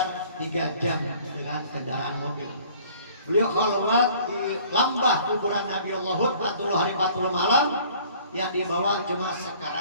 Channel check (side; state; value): both; inverted; correlation -0.53